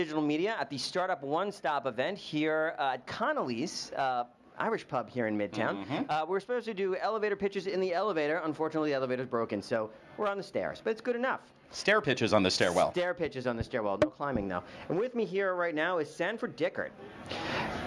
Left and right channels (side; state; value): both; identical; correlation 1.00